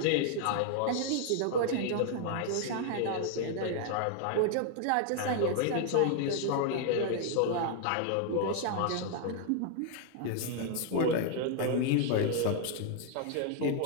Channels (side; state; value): both; different; correlation 0.00